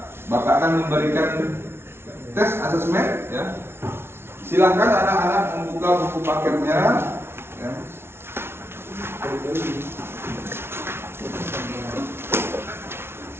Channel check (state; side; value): late; left; 0.12 ms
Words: Bapak akan memberikan tes asesmen ya. Silakan anak-anak membuka buku paketnya ya.